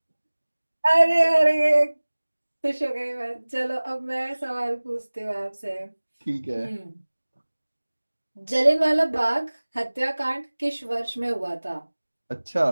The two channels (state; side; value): inverted; both; correlation -1.00